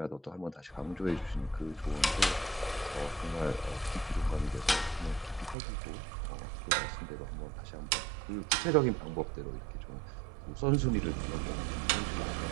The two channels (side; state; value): left; drops out; at 5.6 s